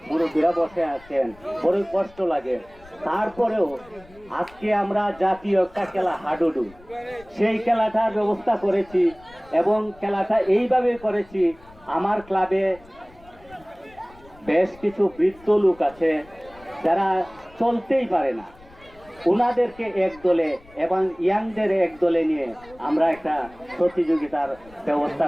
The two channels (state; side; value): noise; left; rumble, 25 dB below the sound